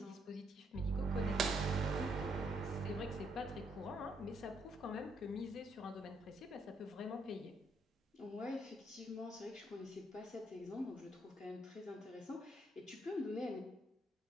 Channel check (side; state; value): both; normal; correlation 0.73